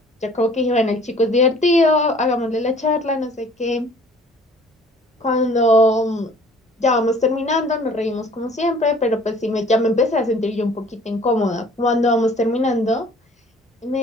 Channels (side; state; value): both; normal; correlation 0.52